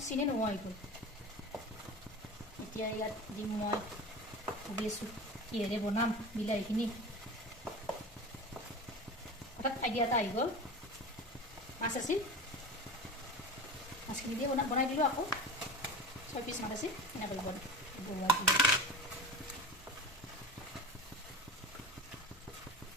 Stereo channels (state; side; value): normal; both; correlation 0.31